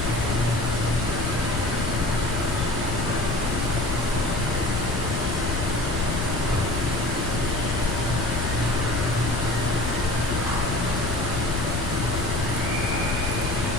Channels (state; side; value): noise; left; rumble, 1 dB below the sound